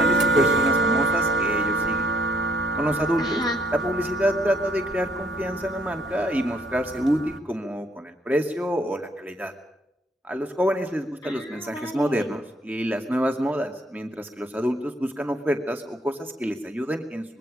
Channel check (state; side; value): normal; both; correlation 0.68